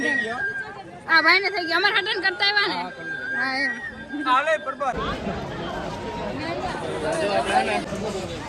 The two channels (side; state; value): both; identical; correlation 1.00